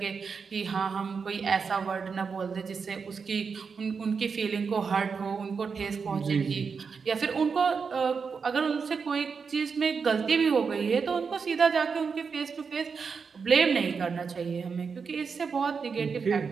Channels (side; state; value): left; quieter; 5.6 dB